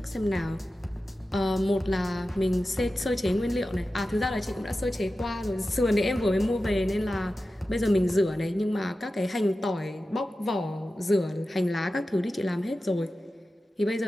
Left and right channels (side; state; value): both; normal; correlation 0.94